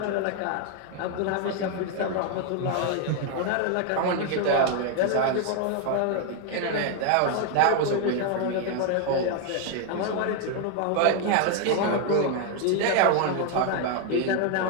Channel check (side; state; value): both; different; correlation 0.01